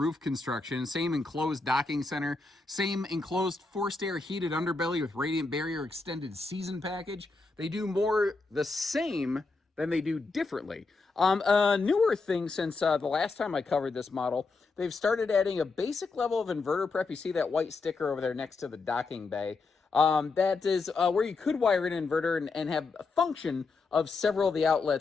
construction, same enclosed docking center, same enclosed forced air heated underbelly with radiant barrier extended season package. They do more the same than they do differently. A newer thing since the last time I covered this model, they've started adding a basic level of inverter prep. You see that white sticker over there next to the docking bay. That is where you could wire in an inverter and have a function of several of the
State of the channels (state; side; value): quieter; right; 3.9 dB